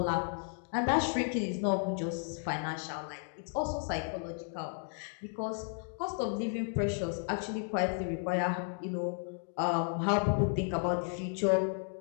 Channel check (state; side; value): silent; right; 55 dB below the other